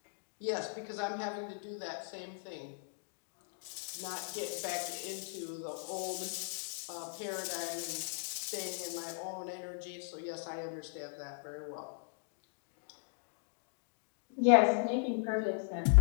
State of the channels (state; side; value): silent; right; digital silence